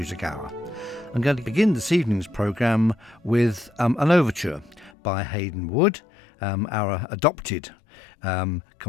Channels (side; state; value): right; drops out; at 4.9 s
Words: hour. I'm going to begin this evening's programme with an overture by Haydn Wood, our adopted